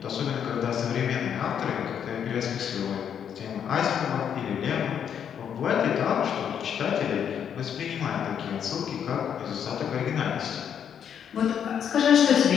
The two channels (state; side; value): quieter; right; 8.4 dB